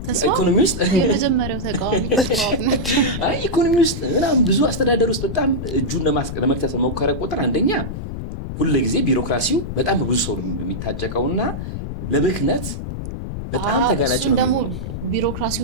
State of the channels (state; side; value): noise; left; rumble, 6 dB below the sound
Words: ኢኮኖሚ ውስጥ የመጀመሪያው ተቃዋሚ ኢኮኖሚ ውስጥ ምናምን ብዙ አስተዳደር ውስጥ በጣም እጁን ለመክተት በሞከረ ቁጥር አንደኛ ሁልጊዜ ቢሮክራሲው በጣም ብዙ ሰው የሚታጨቀውና ለብክነት በጣም ተጋላጭ ነው። ደግሞ